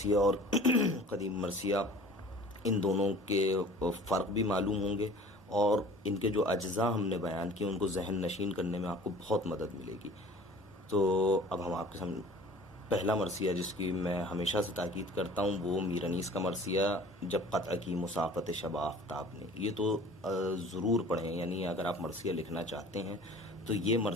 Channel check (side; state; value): both; normal; correlation 0.46